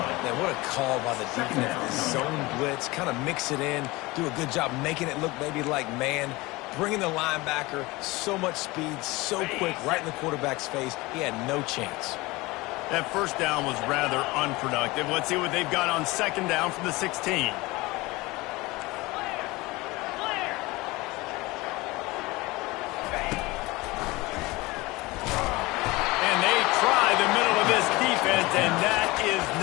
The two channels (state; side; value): quieter; right; 21.9 dB